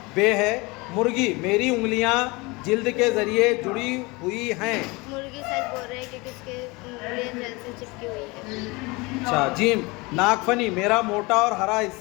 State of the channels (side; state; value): right; quieter; 25.0 dB